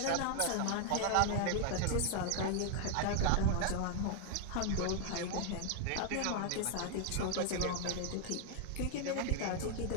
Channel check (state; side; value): different; both; correlation 0.00